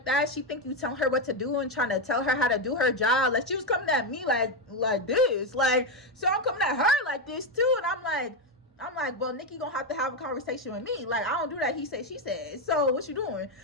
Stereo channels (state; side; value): normal; both; correlation 0.07